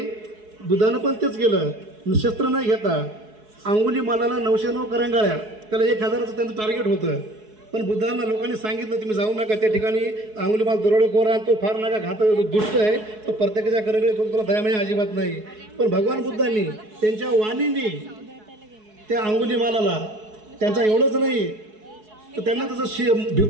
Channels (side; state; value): left; late; 4.7 ms